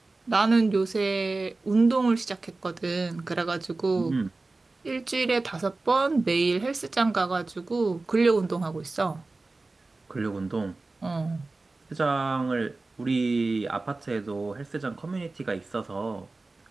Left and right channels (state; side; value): quieter; left; 3.4 dB